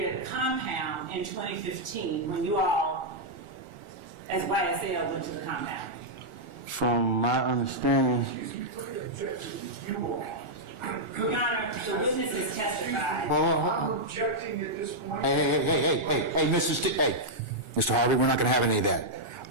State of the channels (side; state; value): left; late; 1.4 ms